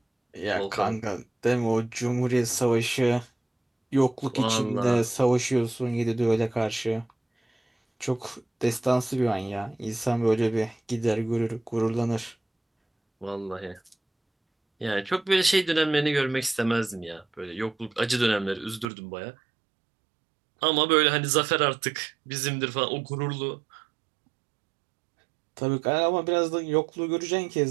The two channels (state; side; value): drops out; left; at 18.9 s